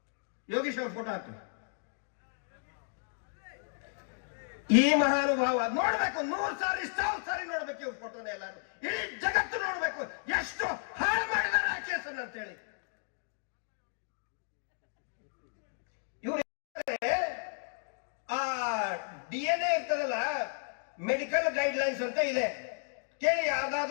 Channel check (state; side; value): silent; right; digital silence